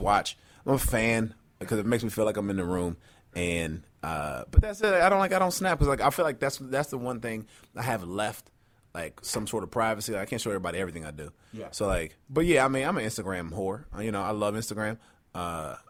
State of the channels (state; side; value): identical; both; correlation 1.00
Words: I'm a fan because it makes me feel like I'm in the room. And but that's it. I don't snap because like I feel like that's the one thing I have left, like some sort of privacy. Like, I can't show everybody everything I do. Yeah. So like, but yeah, I mean, I'm an Instagram whore. I love Instagram. I